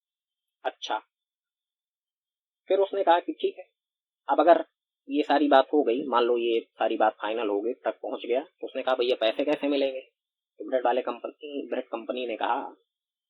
अच्छा, फिर उसने कहा कि ठीक है, अब अगर ये सारी बात हो गई, मान लो ये सारी बात फाइनल हो गई, ट्रक पहुंच गया, तो उसने कहा भैया पैसे कैसे मिलेंगे। तो ब्रेड कंपनी ने कहा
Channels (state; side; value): identical; both; correlation 1.00